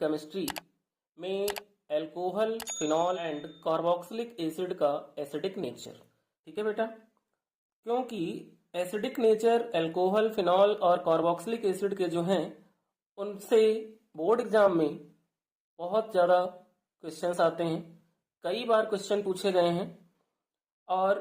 में alcohol, phenol and carboxylic acid का एसिडिक नेचर। ठीक है बेटा, क्योंकि एसिडिक नेचर अल्कोहल, फिनॉल और कार्बोक्सिलिक एसिड के जो हैं उनसे बोर्ड एग्जाम में बहुत ज़्यादा क्वेश्चंस आते हैं, कई बार क्वेश्चन पूछे गए हैं।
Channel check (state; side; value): identical; both; correlation 1.00